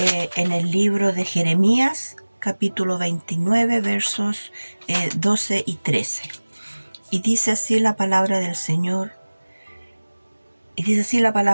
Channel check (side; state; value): both; inverted; correlation -1.00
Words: el libro de Jeremías, capítulo 29, versos 12 y 13. Y dice así la palabra del Señor.